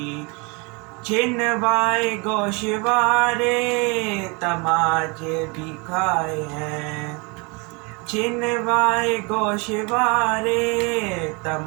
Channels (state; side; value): quieter; left; 30.1 dB